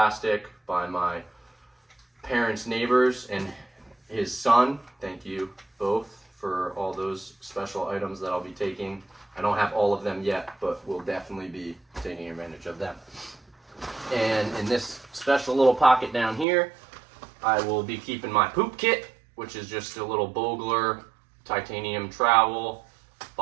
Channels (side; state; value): left; drops out; at 16.4 s